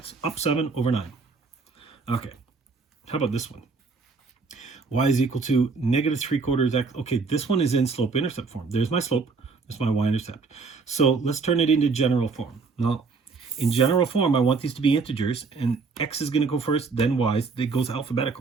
up 7 over 9. Okay, how about this one? Y is equal to negative 3/4 x. Okay, this one is in slope-intercept form. There's my slope. There's my y-intercept. So let's turn it into general form. Now, in general form, I want these to be integers, and x is going to go first, then y's. It goes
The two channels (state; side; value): quieter; left; 4.5 dB